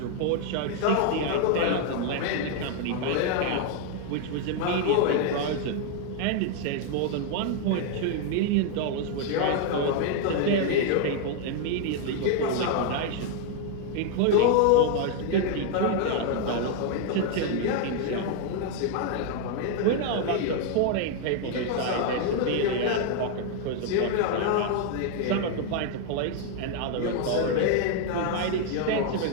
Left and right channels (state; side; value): different; both; correlation 0.00